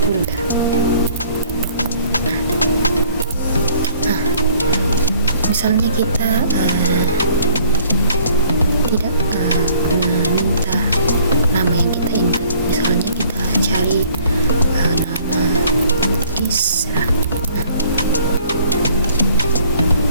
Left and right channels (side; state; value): both; inverted; correlation -0.58